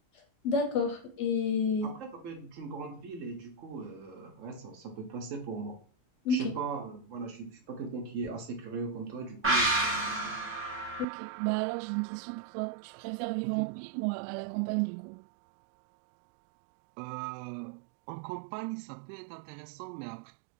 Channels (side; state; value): left; drops out; at 11.1 s